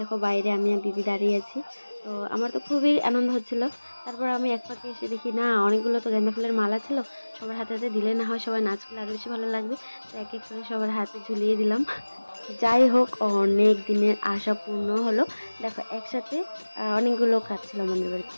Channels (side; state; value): both; inverted; correlation -1.00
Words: দেখো বাইরে আমি আর দিদি দাঁড়িয়ে আছি, তো আমার তো খুবই আনন্দ হচ্ছিল। তারপর আমি এক পাকে এসে দেখি না অনেকগুলো তো গেঁদা ফুলের মালা ছিল, সবার হাতে হাতে দিলে না হয় সবাই নাচ করলে আরও বেশি ভালো লাগবে, তো এক এক করে সবার হাতে ঝুলিয়ে দিলাম। যাই হোক, অনেক দিনের আশা পূর্ণ হলো। দেখো একসাথে অনেকগুলো কাজ ছিল আমাদের বাড়িতে,